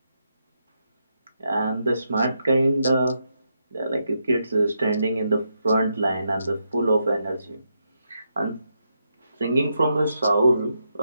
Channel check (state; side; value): inverted; both; correlation -0.82